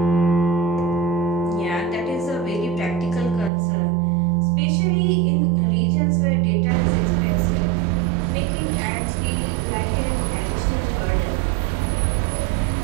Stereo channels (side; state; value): left; drops out; at 3.5 s